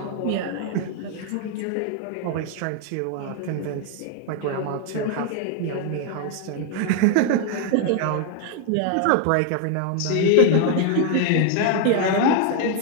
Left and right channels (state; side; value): different; both; correlation 0.00